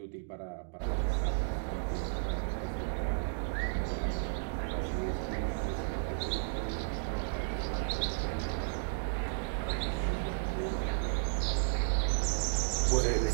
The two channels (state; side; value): silent; left; digital silence